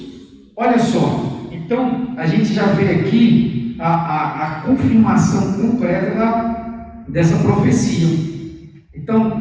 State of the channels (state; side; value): identical; both; correlation 1.00